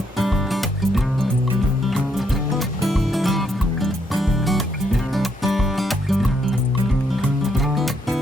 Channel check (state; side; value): normal; both; correlation 0.74